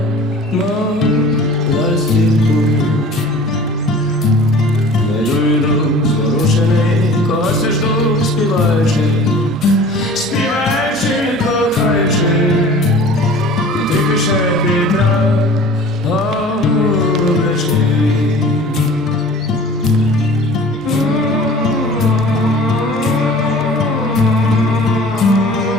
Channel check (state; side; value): normal; both; correlation 0.44